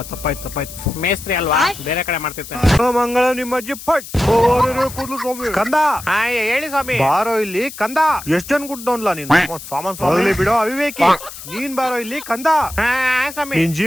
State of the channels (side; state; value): left; noise; hiss, 13 dB below the sound